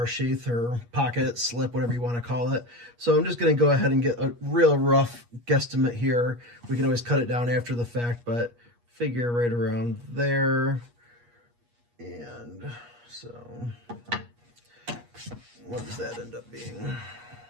sheath or pocket, slip, whatever you want to call it. So I'm just going to go ahead and get a real rough guesstimate here. We can always cut it down after the fact, but figure right around there. And so what does that end up being?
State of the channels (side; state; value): left; late; 8.4 ms